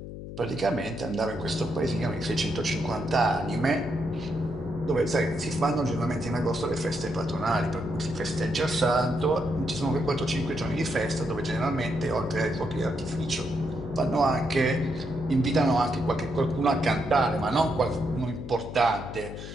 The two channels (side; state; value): left; noise; hum, 10 dB below the sound